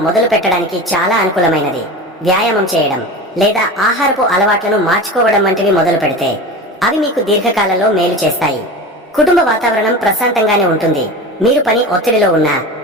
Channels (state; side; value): normal; both; correlation 0.30